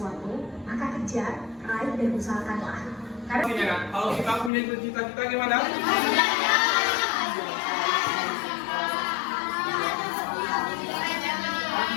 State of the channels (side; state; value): right; drops out; at 4.5 s